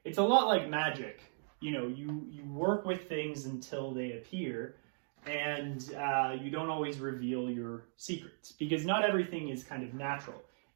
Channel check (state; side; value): silent; left; digital silence